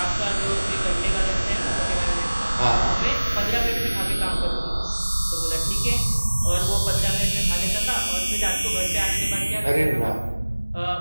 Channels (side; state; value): both; inverted; correlation -1.00